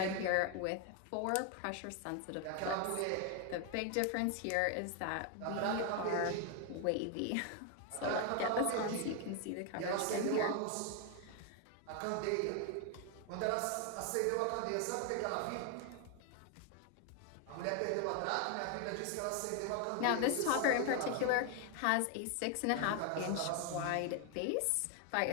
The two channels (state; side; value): different; both; correlation 0.01